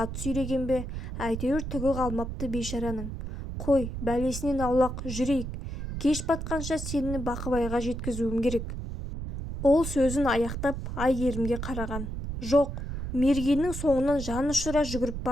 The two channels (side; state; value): right; noise; rumble, 6 dB below the sound